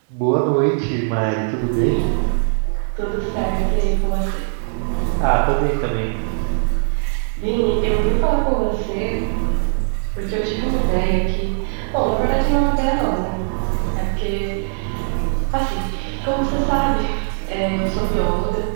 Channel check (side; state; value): left; silent; 66 dB below the other